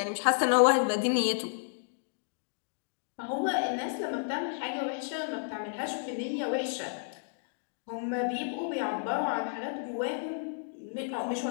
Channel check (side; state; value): right; silent; digital silence